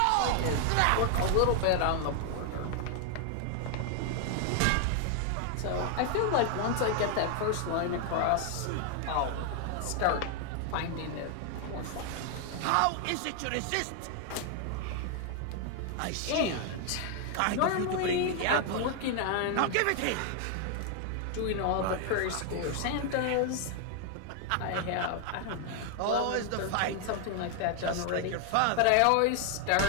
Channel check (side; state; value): both; different; correlation 0.00